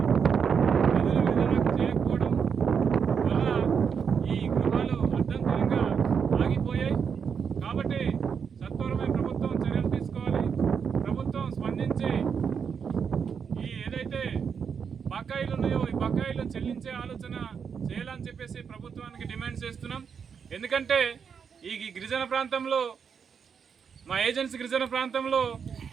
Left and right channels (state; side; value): quieter; left; 6.7 dB